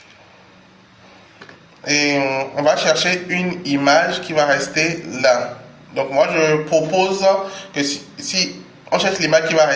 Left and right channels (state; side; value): identical; both; correlation 1.00